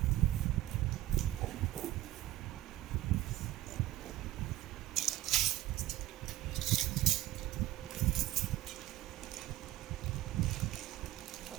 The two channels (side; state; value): left; quieter; 15.4 dB